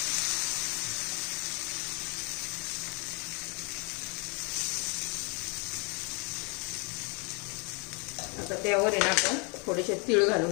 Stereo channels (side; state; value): right; quieter; 32.7 dB